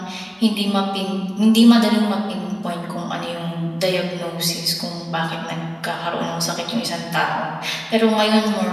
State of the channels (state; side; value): identical; both; correlation 1.00